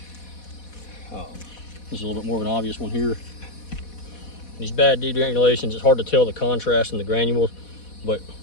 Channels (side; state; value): right; late; 4.1 ms